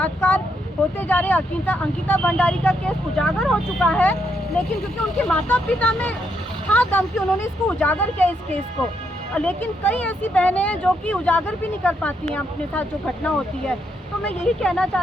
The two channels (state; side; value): normal; both; correlation 0.77